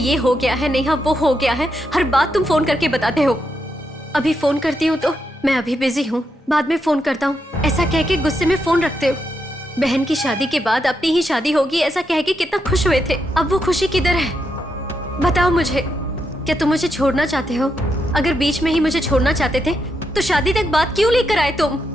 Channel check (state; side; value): normal; both; correlation 0.82